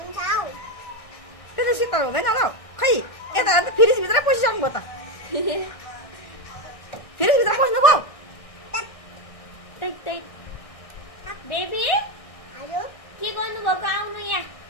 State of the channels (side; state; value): right; late; 1.6 ms